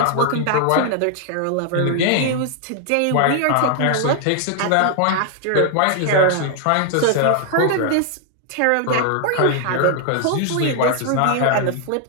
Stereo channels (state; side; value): different; both; correlation 0.00